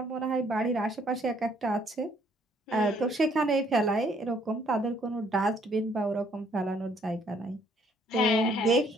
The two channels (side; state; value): both; normal; correlation 0.65